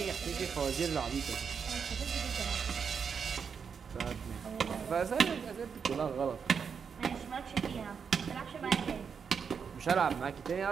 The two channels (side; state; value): left; quieter; 6.4 dB